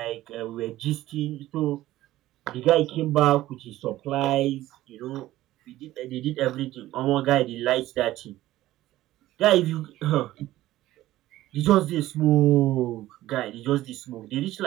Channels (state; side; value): quieter; left; 15.4 dB